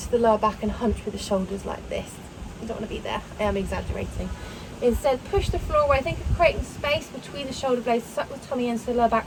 the lower back and hunch with the shoulders like this. You don't want to be there. I am exaggerating. Instead, push the floor away. Think of creating space between the shoulder blades, suck the tummy in so the lower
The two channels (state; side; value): identical; both; correlation 1.00